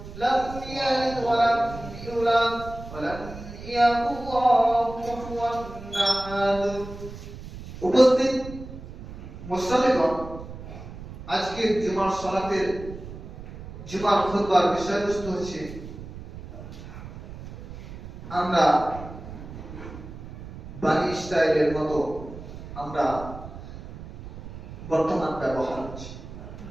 لم يلد ولم يولد ولم يكن له كفوا أحد উপস্থিত মুসল্লিগণ, আজকে জুমার সালাতের জুমার খুতবার বিষয়বস্তু হচ্ছে আমরা বানি ইসরায়েলের মতো আমরা বর্তমান ব্যবহার হচ্ছে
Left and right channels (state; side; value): noise; right; rumble, 13 dB below the sound